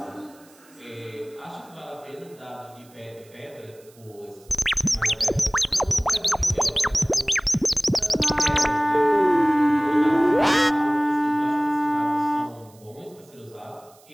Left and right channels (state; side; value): noise; right; hiss, 28 dB below the sound